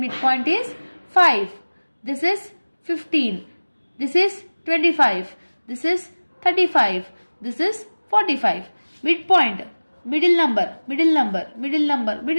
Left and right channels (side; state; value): both; inverted; correlation -1.00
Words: is 5. This is 15. This is 25. This is 35. This is 45. Midpoint, middle number, middle number, middle number,